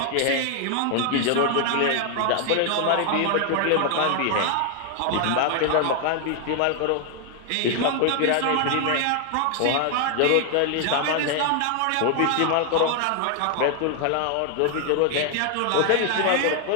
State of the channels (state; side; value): different; both; correlation 0.00